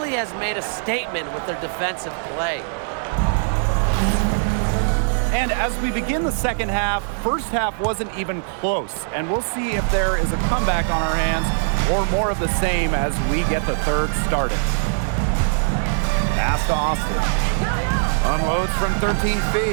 has made a statement with their defensive play. And as we begin the second half, first half wasn't even close. And we'll see if there is a comeback on our hands or more of the same as we get the third started. Pass to Austin. Unloads from 13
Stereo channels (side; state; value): left; silent; digital silence